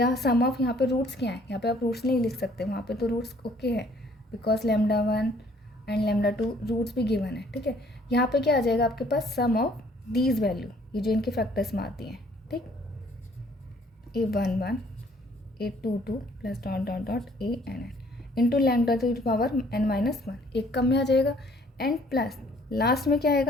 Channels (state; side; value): normal; both; correlation 0.60